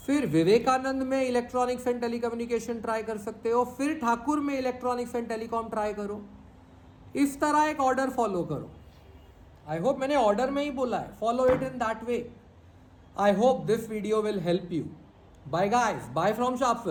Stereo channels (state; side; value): identical; both; correlation 1.00